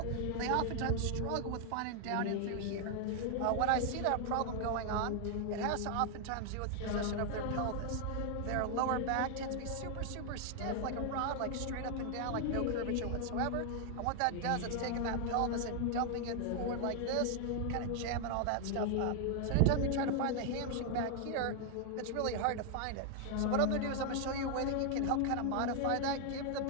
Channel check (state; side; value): different; both; correlation 0.00